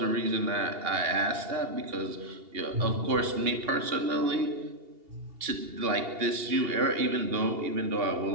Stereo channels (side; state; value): left; late; 2.8 ms